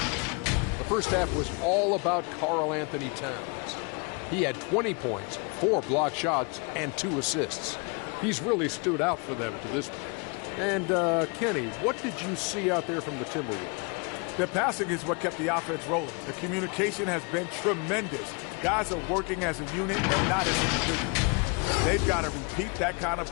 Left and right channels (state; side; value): quieter; right; 32.6 dB